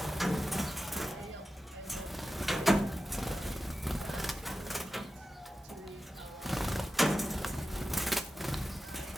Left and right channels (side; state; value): both; normal; correlation 0.93